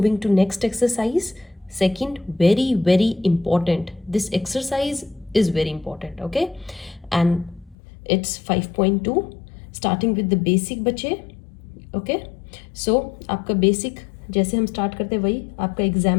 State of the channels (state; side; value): drops out; right; at 7.8 s